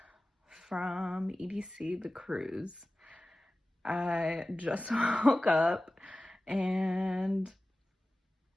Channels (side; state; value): both; normal; correlation 0.96